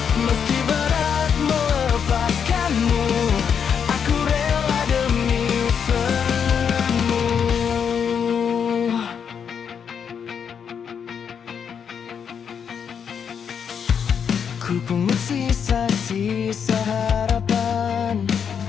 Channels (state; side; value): quieter; right; 7.3 dB